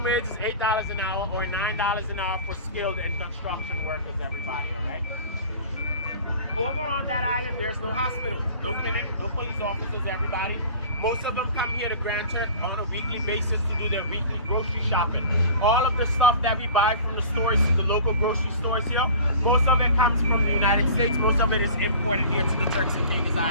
wage is $8 an hour or $9 an hour for skilled and construction workers, everybody, all right? Over on that island, there's no hospital, no clinic, no police officers, everybody. Most of them come here to Grand Turk on a weekly basis to do their weekly grocery shopping. All of the stuff that we buy from the stores, the local grocery stores here, most of it comes from the United States. Most of it is imported here to the Turks and Caicos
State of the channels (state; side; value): inverted; both; correlation -0.41